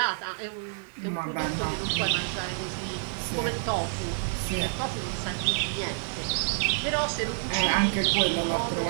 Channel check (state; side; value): silent; left; digital silence